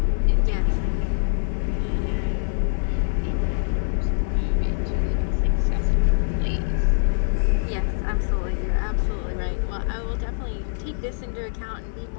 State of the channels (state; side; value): silent; right; 62 dB below the other